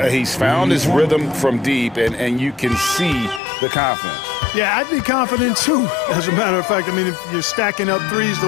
He's found his rhythm from deep, and you can see the confidence. Yeah, I'd be confident too. As a matter of fact, I mean, if you're stacking up threes the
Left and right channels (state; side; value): drops out; right; at 3.4 s